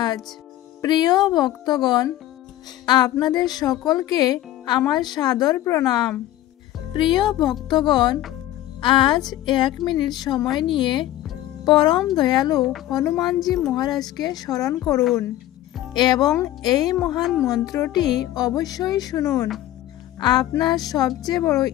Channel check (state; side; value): quieter; right; 13.9 dB